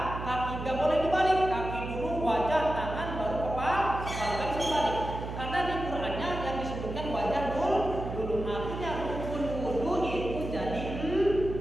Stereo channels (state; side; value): noise; right; hum, 7 dB below the sound